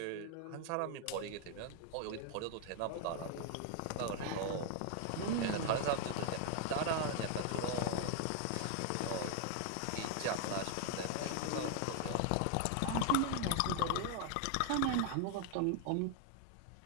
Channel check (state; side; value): different; both; correlation 0.00